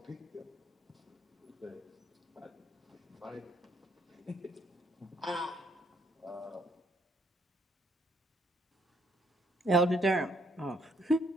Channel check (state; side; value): normal; both; correlation 0.70